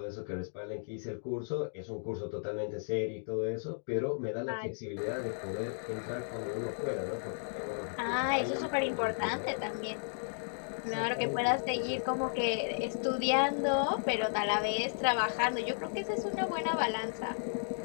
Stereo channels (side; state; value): right; silent; digital silence